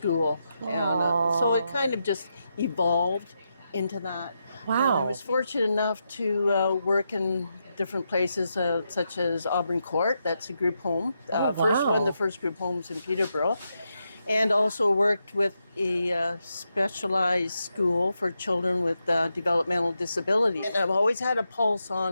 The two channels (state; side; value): inverted; both; correlation -0.85